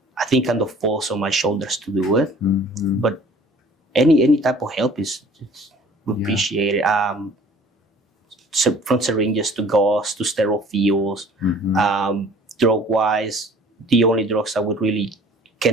I think kind of falls on my shoulders to do it. But any type of help is appreciated. From syringes to gauze to sterile fields, drug wise, the only drugs that would really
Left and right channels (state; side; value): normal; both; correlation 0.51